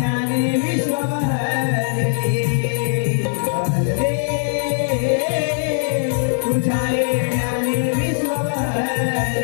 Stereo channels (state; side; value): silent; right; 64 dB below the other